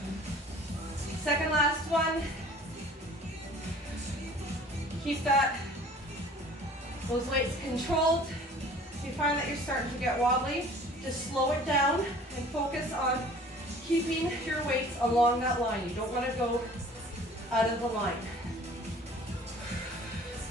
Second last one. Keep those weights controlled. If you find that you're starting to get wobbly, just slow it down and focus on keeping your weights along that line. You don't want to go out of the line.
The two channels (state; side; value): normal; both; correlation 0.49